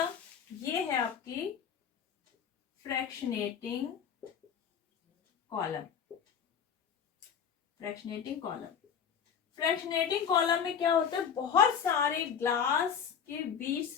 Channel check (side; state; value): right; quieter; 7.5 dB